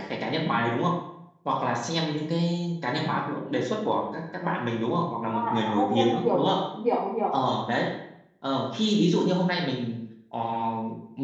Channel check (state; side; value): identical; both; correlation 1.00